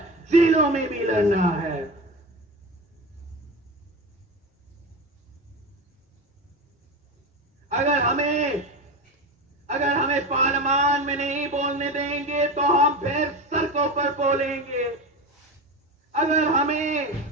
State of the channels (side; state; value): both; normal; correlation 0.24